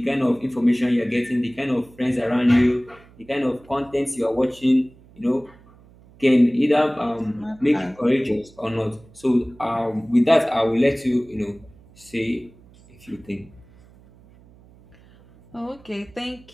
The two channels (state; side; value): noise; right; hum, 26 dB below the sound